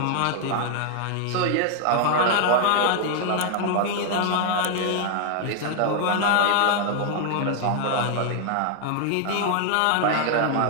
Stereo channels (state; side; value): different; both; correlation 0.00